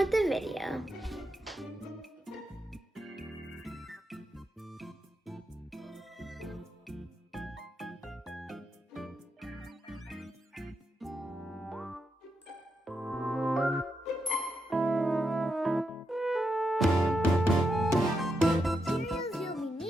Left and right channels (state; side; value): normal; both; correlation 0.84